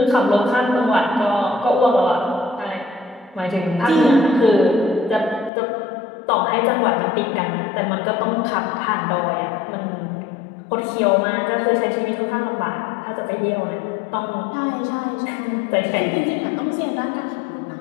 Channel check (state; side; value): drops out; right; at 5.5 s